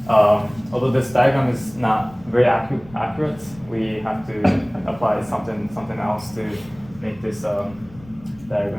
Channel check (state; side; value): noise; left; rumble, 22 dB below the sound